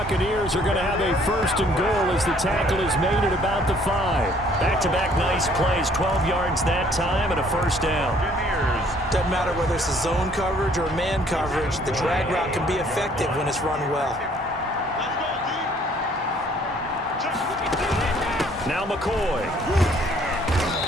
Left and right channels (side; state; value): both; normal; correlation 0.60